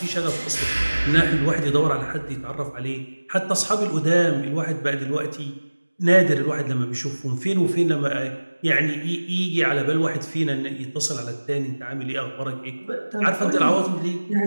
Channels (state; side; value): inverted; both; correlation -1.00